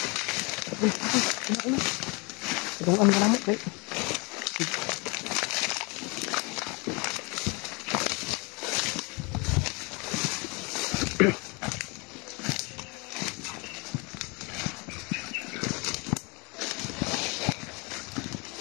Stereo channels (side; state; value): right; quieter; 29.2 dB